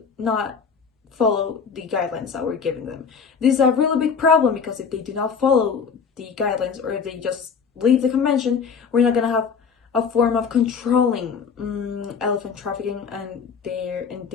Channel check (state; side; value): quieter; right; 6.0 dB